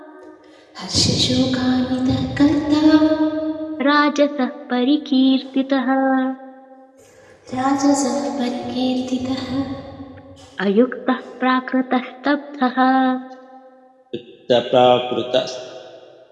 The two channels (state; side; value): identical; both; correlation 1.00